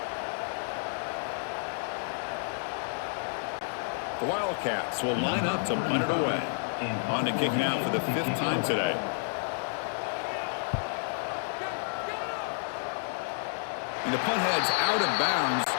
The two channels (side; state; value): right; silent; digital silence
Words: The Wildcats will line up to punt it away. On to kick now for the fifth time today. And the punt heads out of bounds.